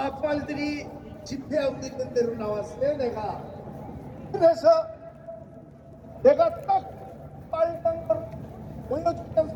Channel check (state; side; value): identical; both; correlation 1.00